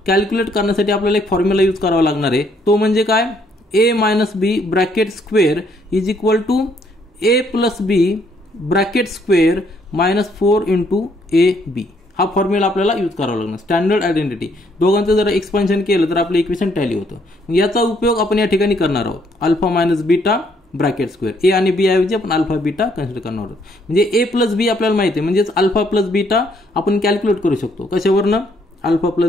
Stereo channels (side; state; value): both; normal; correlation 0.69